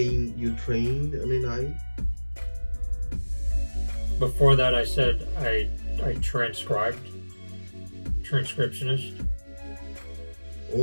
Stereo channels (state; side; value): inverted; both; correlation -1.00